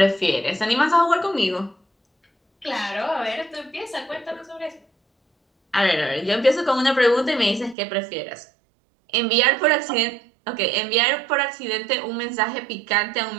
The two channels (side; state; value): left; drops out; at 7.8 s